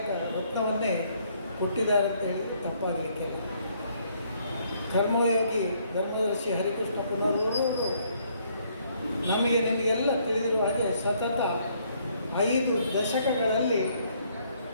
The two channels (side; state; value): both; inverted; correlation -0.67